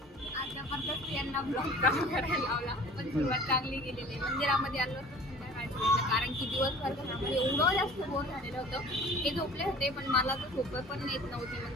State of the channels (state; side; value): normal; both; correlation 0.45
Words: आज जबरदस्त यांना ब्लॉग करायला लावला, पण सुरुवात चांगली गेलेली. मंदिरामध्ये आलो होतो संध्याकाळच्या वेळेला, कारण की दिवसभर घरामध्ये एवढं जास्त बोर झालेलं होतं. ते झोपले होते पण मला तर झोप पण येत नव्हती,